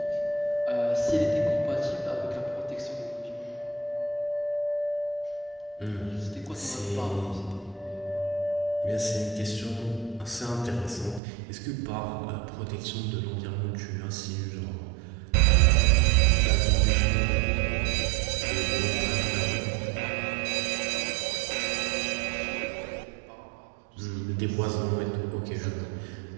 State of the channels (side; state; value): left; drops out; at 11.2 s